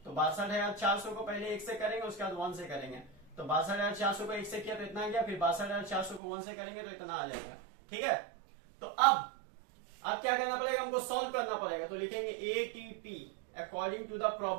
तो 62,400 को पहले 1 से करेंगे, उसके बाद 1 से करेंगे। तो 62,400 को 1 से किया तो इतना आ गया, फिर 62,400 को 1 से करेंगे तो इतना आ जाएगा, ठीक है। तो अब अब क्या करना पड़ेगा, हमको सॉल्व करना पड़ेगा। तो लिखेंगे ATP according to the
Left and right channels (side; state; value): left; drops out; at 6.2 s